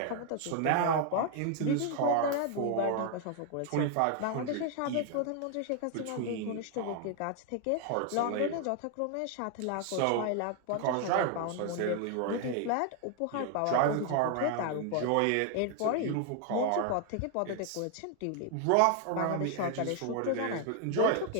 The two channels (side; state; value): both; different; correlation 0.00